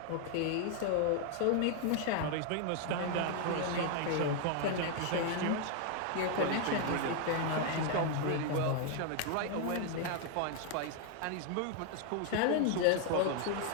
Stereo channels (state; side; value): different; both; correlation 0.00